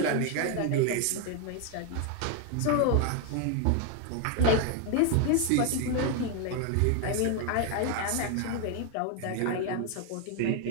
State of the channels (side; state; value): both; different; correlation 0.01